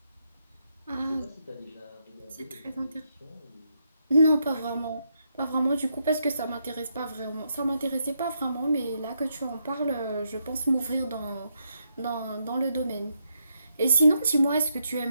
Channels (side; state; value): both; inverted; correlation -0.80